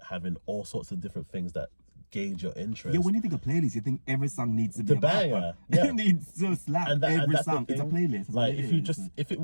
having all sorts of different things that gauge your interest. Yeah, when you think of playlist, you think every song needs to be a banger. Yeah. It needs to slap every song. It's a playlist. Like, if it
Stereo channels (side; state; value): both; inverted; correlation -1.00